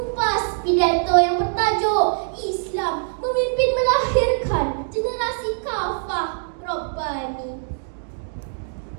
pidato yang bertajuk Islam Memimpin Melahirkan Generasi Kafah Rabbani.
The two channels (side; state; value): left; silent; digital silence